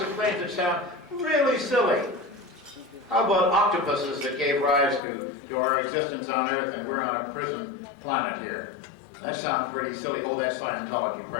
of claims that sound really silly. How about octopuses that gave rise to our existence on Earth, and we're on a prison planet here? That sounds pretty silly. Oh, that's Scientology,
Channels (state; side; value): drops out; right; at 5.0 s